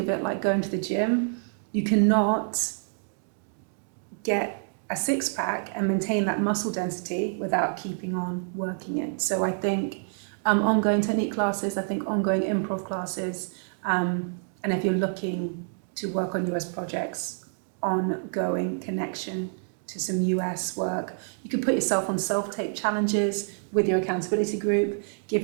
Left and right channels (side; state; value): left; silent; digital silence